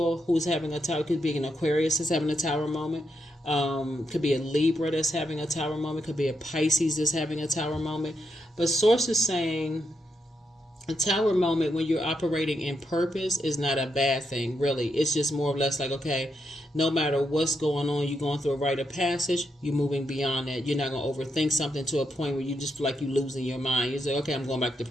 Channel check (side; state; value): both; normal; correlation 0.82